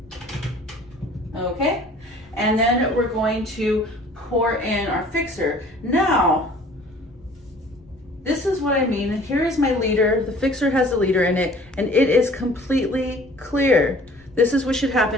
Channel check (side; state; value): both; normal; correlation 0.51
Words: Okay, and then we're going to pour in our fixer. Now, this is what I mean. Here is my liter. The fixer has a liter in it, and it is completely clear. This is what should